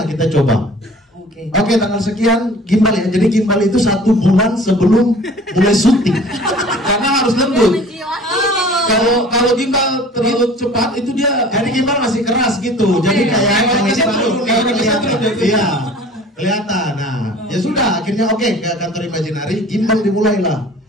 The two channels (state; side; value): normal; both; correlation 0.46